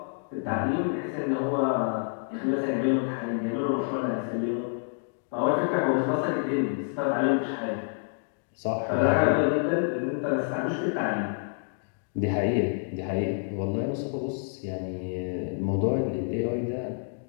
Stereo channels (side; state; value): right; silent; digital silence